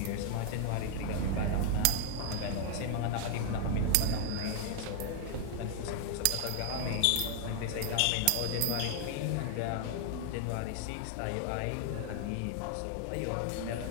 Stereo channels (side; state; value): both; different; correlation 0.00